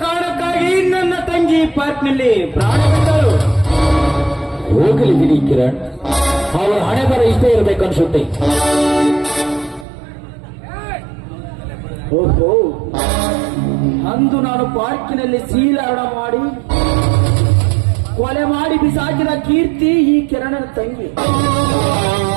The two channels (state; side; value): drops out; left; at 9.9 s